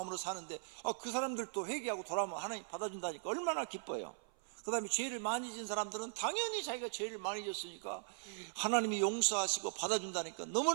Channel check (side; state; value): left; silent; 51 dB below the other